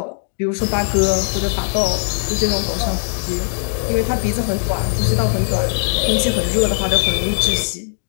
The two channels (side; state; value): right; silent; digital silence